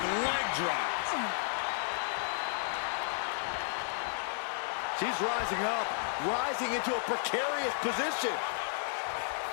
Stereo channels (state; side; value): silent; right; digital silence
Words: leg drop. She's rising up, rising into a precarious position.